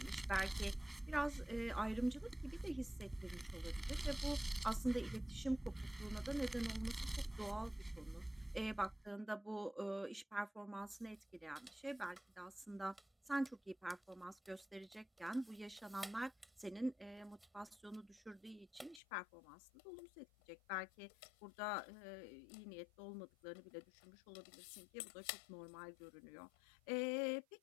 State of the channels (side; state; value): right; drops out; at 19.0 s